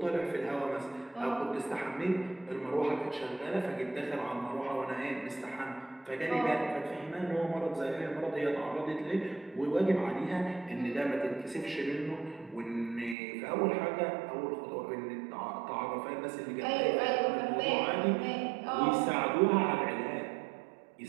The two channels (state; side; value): drops out; left; at 13.2 s